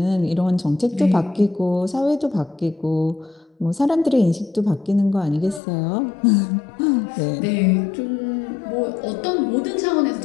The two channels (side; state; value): right; drops out; at 5.6 s